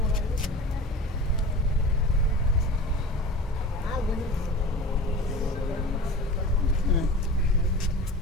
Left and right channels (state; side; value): normal; both; correlation 0.36